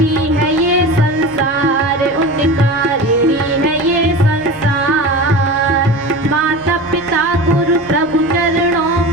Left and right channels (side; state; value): left; noise; rumble, 25 dB below the sound